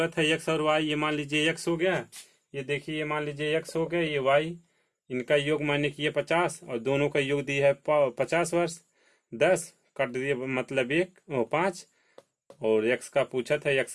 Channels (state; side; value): identical; both; correlation 1.00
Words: था एक्स और वाई, ये मान लीजिए एक्स हो गया, ये देखिए ये मान लीजिए एक्स हो गया, ये वाई, इनका योग माने कि ये 50 और दोनों का योग दिया है 50 वर्ष। 10 काट दिए मतलब 5, और एक्स का पूछा था, एक्स